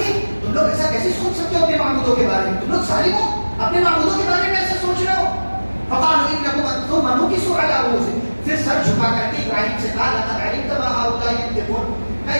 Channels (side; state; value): both; inverted; correlation -1.00